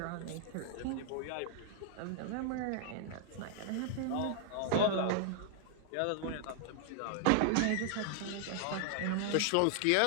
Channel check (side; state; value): both; different; correlation 0.00